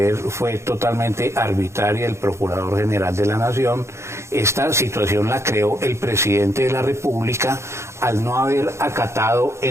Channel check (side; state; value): left; late; 0.13 ms